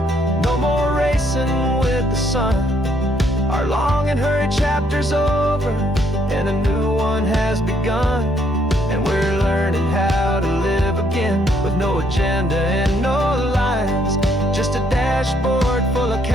no more racing with the sun. Our long and hurried chapter's over, and a new one has begun. And we're learning how to live again, with no agenda and no lines, just a dashboard full of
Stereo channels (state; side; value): normal; both; correlation 0.70